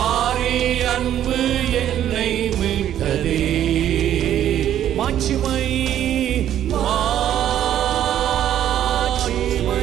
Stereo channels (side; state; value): left; quieter; 11.1 dB